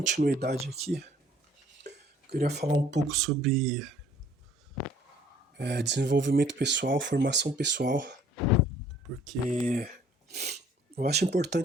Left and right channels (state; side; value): normal; both; correlation 0.57